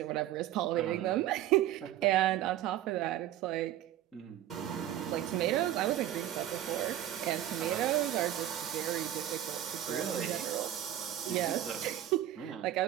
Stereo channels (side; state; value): left; quieter; 12.3 dB